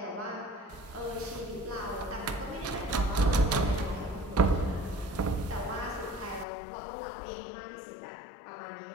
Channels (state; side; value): drops out; right; at 6.5 s